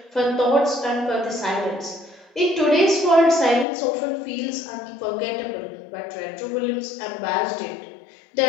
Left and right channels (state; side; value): drops out; right; at 3.7 s